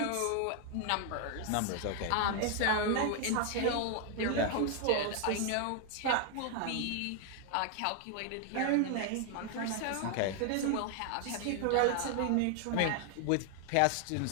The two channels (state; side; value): different; both; correlation 0.00